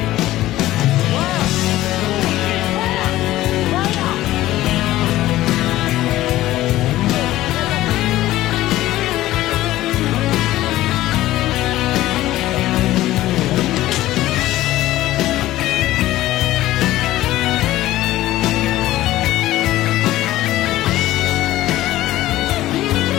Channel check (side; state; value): right; quieter; 15.5 dB